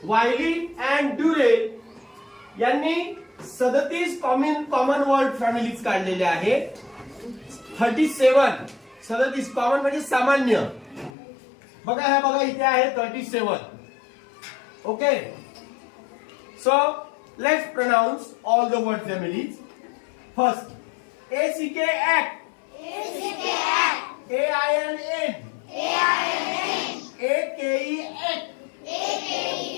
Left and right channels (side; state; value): right; drops out; at 11.1 s